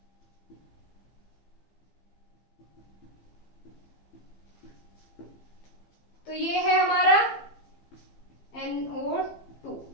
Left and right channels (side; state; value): right; late; 15 ms